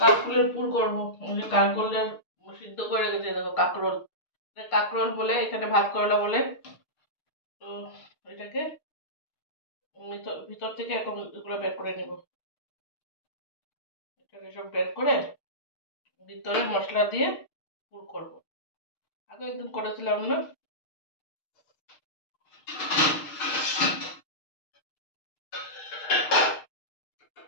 কাকরোলের পুর করবো, কাকরোলের সিদ্ধ করে রেখেছি, দেখো কাকরোল, কাকরোল বলে এখানে, ভাত করলা বলে। তো এটাকে ভিতর থেকে এখন এগুলো বের করে নেব। এটাকে সব বের করে ভিতরে মশলা দিয়ে পুর করব। আগে একদিন করেছিলাম না,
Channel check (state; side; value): late; right; 6.5 ms